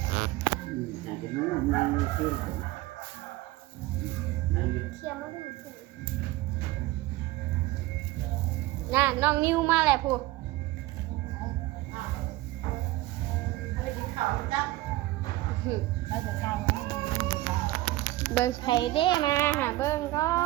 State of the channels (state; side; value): quieter; left; 17.7 dB